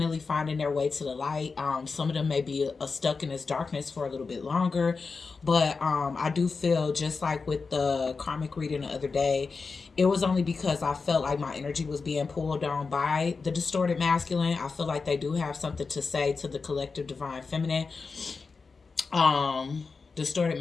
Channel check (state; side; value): quieter; right; 4.6 dB